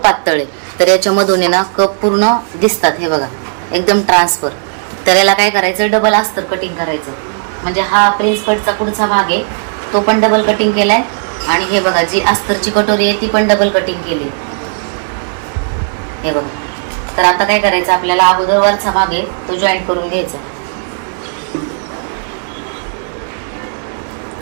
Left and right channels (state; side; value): silent; left; digital silence